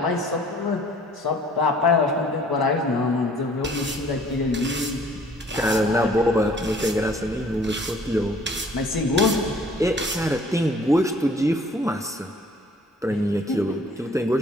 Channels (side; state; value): both; normal; correlation 0.55